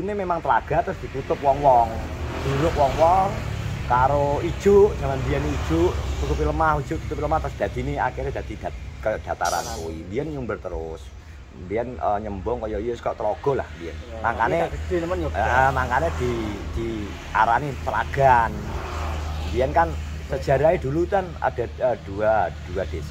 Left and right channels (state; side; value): identical; both; correlation 1.00